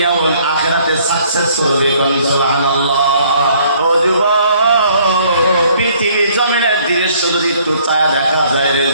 ও আখিরাতে সাকসেস করবে। সুবহানাল্লাহ। ও যুবক, পৃথিবীর জমিনের দৃশ্য যদি একটু ছায়া দেখা যায় রে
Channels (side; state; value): both; inverted; correlation -0.61